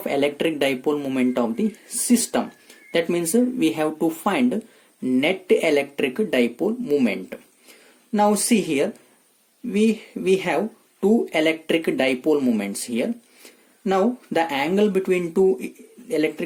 electric dipole moment of the system. That means we have to find net electric dipole moment. Now see here, we have two electric dipole moments here. Now the angle between two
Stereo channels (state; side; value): identical; both; correlation 1.00